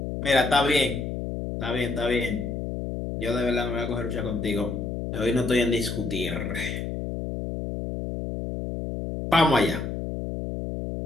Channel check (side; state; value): left; noise; hum, 4 dB below the sound